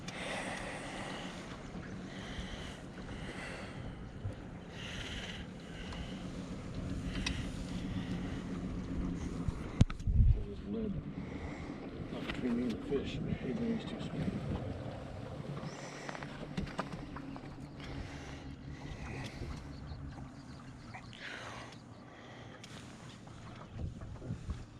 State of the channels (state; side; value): identical; both; correlation 1.00